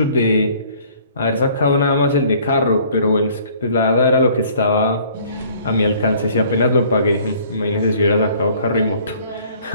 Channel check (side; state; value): both; inverted; correlation -0.56